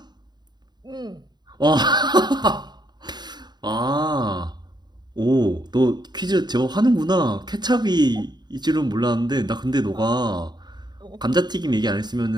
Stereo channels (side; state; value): left; late; 0.21 ms